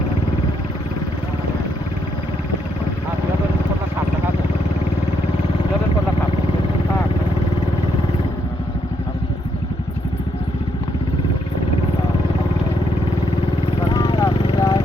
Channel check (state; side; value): normal; both; correlation 0.76